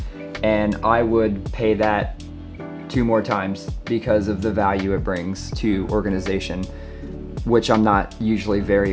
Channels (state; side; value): identical; both; correlation 1.00